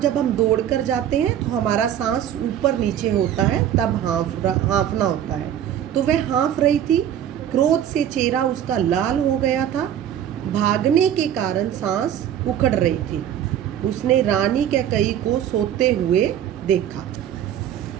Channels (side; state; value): left; quieter; 10.3 dB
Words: हम दौड़ कर जाते हैं तो हमारा सांस ऊपर नीचे होता है, तब हाँफना होता है। तो वह हाँफ रही थी। क्रोध से चेहरा उसका लाल हो गया था। भागने के कारण सांस उखड़ रही थी। उसने रानी कैकेयी को सोते हुए देखा।